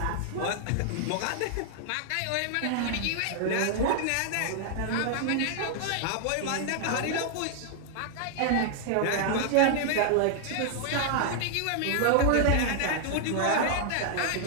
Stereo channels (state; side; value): different; both; correlation 0.00